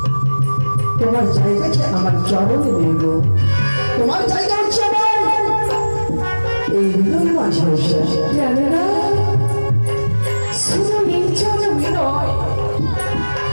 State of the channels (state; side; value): inverted; both; correlation -1.00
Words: তোমার জায়গাটা আমার চরণে নেব, তোমার জায়গা হচ্ছে আমার এই হৃদয় মাঝে। উষা, জানো না, শুধু এই জনমে নয়,